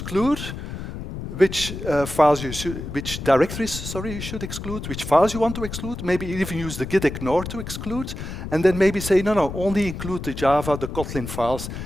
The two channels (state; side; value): noise; left; rumble, 8 dB below the sound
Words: which which directories, sorry, you should exclude, which files you want to exclude, maybe even use the git ignore to exclude, and then maybe say, no, only include the Java, the Kotlin files,